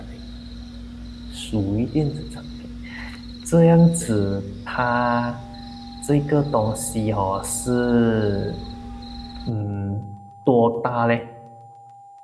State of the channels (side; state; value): both; identical; correlation 1.00